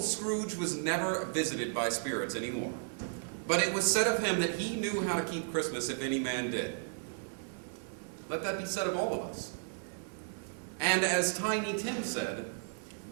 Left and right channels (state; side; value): silent; left; 55 dB below the other